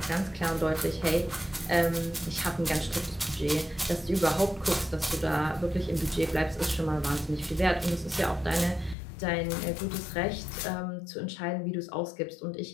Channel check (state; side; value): drops out; right; at 9.0 s